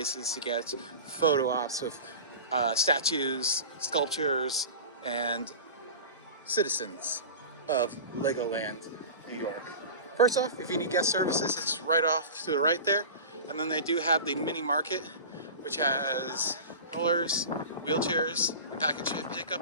to get photo ops with statues, sculptures, and citizens of Legoland, New York. First off, if you need guest services, it's right off to the right there. And then they do have the mini market, which has rollers, wheelchairs, and package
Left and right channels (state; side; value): inverted; both; correlation -0.33